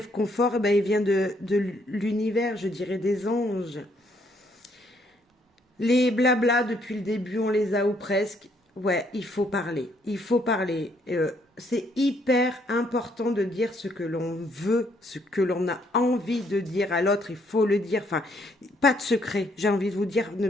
ben, il vient de l'univers, je dirais des anges. Les blabla, depuis le début, on les a ou presque. Ouais, il faut parler. Il faut parler. C'est hyper important de dire ce que l'on veut, ce que l'on a envie de dire à l'autre. Il faut le dire. Enfin, pas de secret. J'ai envie de vous dire, ne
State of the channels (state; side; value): normal; both; correlation 0.69